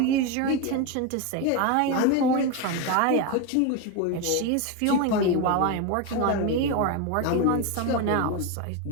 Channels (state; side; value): different; both; correlation 0.03